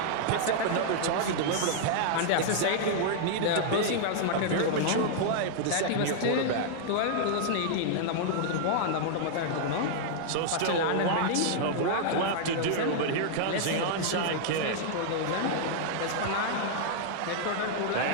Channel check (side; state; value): both; different; correlation -0.01